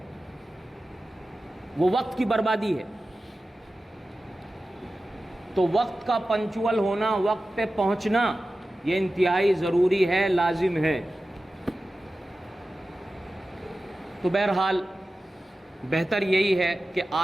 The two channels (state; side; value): normal; both; correlation 0.94